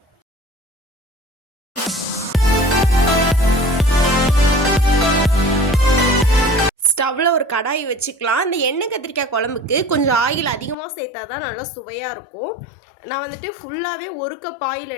ஸ்டவ்வில் ஒரு கடாய் வச்சுக்கலாம். இந்த எண்ணெய் கத்திரிக்காய் குழம்புக்கு கொஞ்சம் ஆயில் அதிகமாக சேர்த்தா தான் நல்லா சுவையாக இருக்கும். நான் வந்துட்டு ஃபுல்லாகவே 1 கப் ஆயில்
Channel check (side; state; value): right; drops out; at 10.8 s